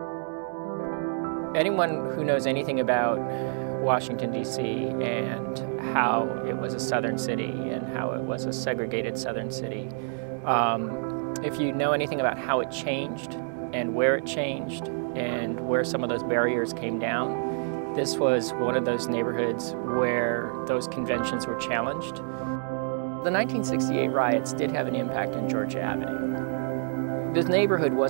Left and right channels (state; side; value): silent; left; digital silence